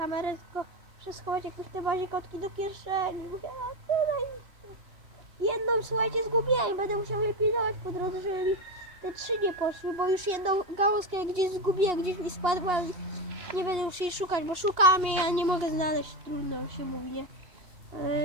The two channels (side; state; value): left; late; 2.8 ms